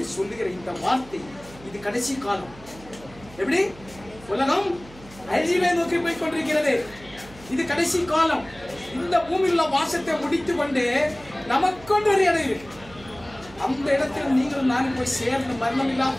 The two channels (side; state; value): right; noise; hum, 20 dB below the sound